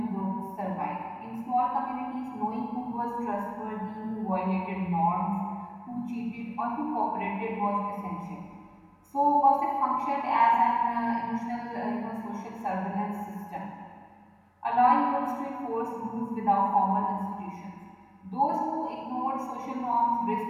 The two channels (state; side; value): identical; both; correlation 1.00